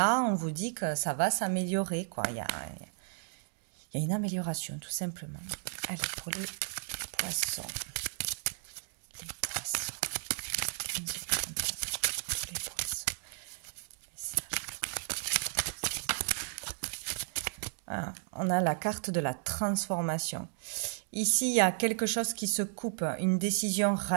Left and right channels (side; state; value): left; silent; digital silence